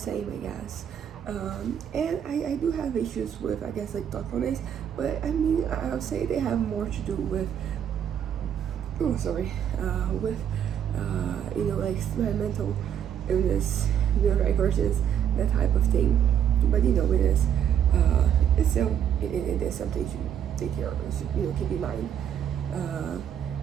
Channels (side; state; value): left; quieter; 9.2 dB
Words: I guess. And I do have issues with, I guess, like thoughtfulness, but I mean, I would say they have more to do with, with, like my mental illness, neurodivergence, that type of thing. But it is, it's still, it is something to take care of, keep in mind.